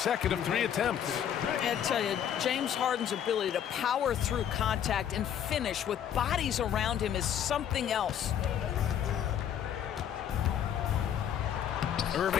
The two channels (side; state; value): right; quieter; 9.5 dB